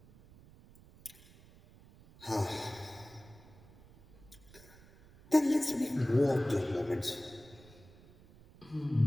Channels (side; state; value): right; noise; rumble, 23 dB below the sound